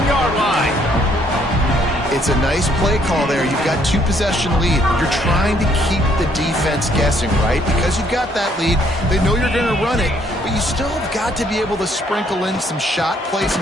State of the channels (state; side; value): normal; both; correlation 0.67